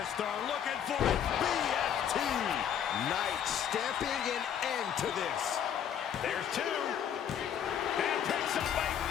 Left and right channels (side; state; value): right; quieter; 8.9 dB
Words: looking for it. BFT. Knight stamping an end to this. There's 2. And picks up a